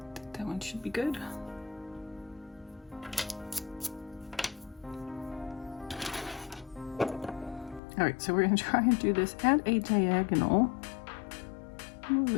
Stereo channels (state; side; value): drops out; right; at 7.8 s